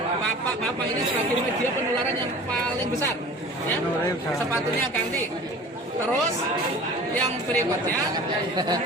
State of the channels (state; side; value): normal; both; correlation 0.42